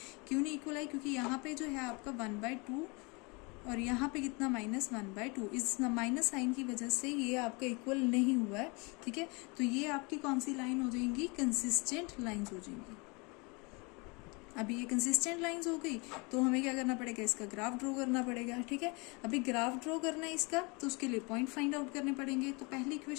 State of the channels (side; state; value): right; quieter; 29.3 dB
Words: क्यों नहीं इक्वल आई, क्योंकि यहाँ पे जो है आपका 1/2 और यहाँ पे कितना -1/2, इस माइनस साइन की वजह से ये आपका इक्वल नहीं हुआ है, ठीक है। तो ये आपकी कौन सी लाइन हो जाएंगी, कंसिस्टेंट लाइंस हो जाएंगी। अभी ये कंसिस्टेंट लाइंस हो गई, तो हमें क्या करना पड़ेगा, इसका ग्राफ ड्रॉ करना पड़ेगा, ठीक है। अभी ग्राफ ड्रॉ करना है इसका, तो उसके लिए पॉइंट फाइंड आउट करने पड़ेंगे। तो पहली